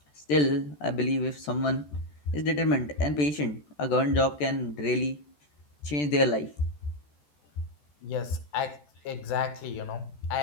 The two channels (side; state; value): right; late; 14 ms